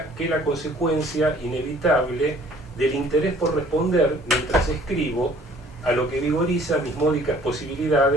que la consecuencia inevitable del interés por responder mientras escribo a lo que vigoriza mis módicas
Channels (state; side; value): normal; both; correlation 0.55